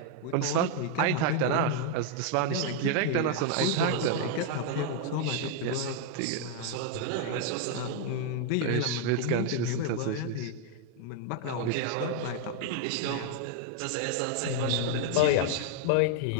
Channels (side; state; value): both; different; correlation 0.00